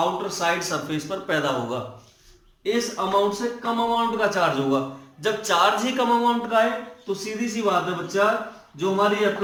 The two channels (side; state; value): both; identical; correlation 1.00